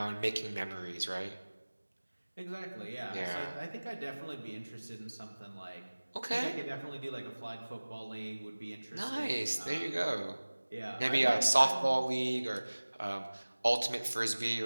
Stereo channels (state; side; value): inverted; both; correlation -1.00